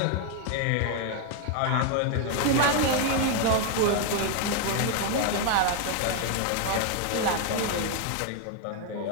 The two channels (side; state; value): both; different; correlation 0.00